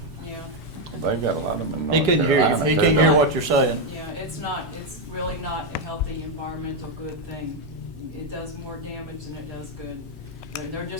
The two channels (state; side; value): normal; both; correlation 0.04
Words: yeah, They've got a lot of them in He North couldn't hear you. Carolina, He too, couldn't hear don't what you're saying. yeah, it's really not a healthy environmental good thing. It does more damage than it does good. They're